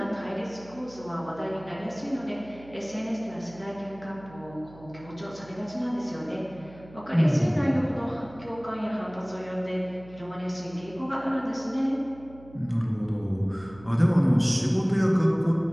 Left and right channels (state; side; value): noise; right; hum, 20 dB below the sound